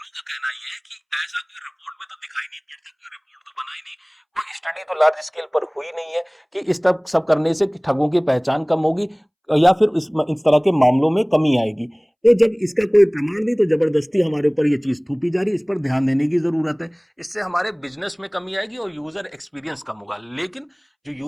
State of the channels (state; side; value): identical; both; correlation 1.00